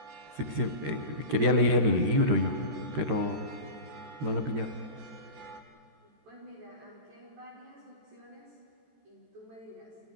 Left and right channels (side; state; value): left; late; 14 ms